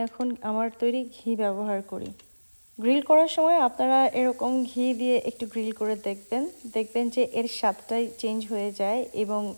এখন আমার তৈরি ঘি ব্যবহার করি। গ্রিল করার সময় আপনারা এরকম ঘি দিয়ে একটু গ্রিল করে দেখবেন যে এর স্বাদটাই চেঞ্জ হয়ে যায় এবং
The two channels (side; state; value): both; inverted; correlation -1.00